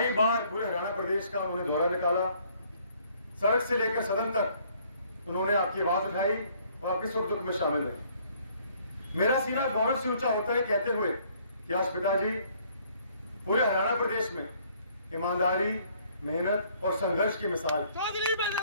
बार पूरे हरियाणा प्रदेश का उन्होंने दौरा निकाला। सड़क से लेकर सदन तक उन्होंने आपकी आवाज उठाई और आपके सुख दुख में शामिल रहे। मेरा सीना गौरव से ऊंचा होता है कहते हुए कि आज पिताजी पूरे हरियाणा प्रदेश में ईमानदारी, मेहनत और संघर्ष की मिसाल।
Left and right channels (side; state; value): both; inverted; correlation -0.62